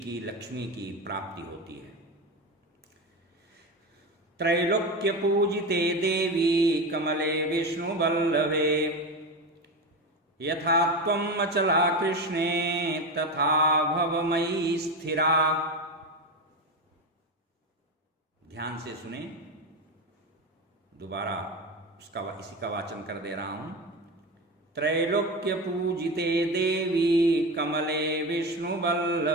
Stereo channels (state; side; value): normal; both; correlation 0.21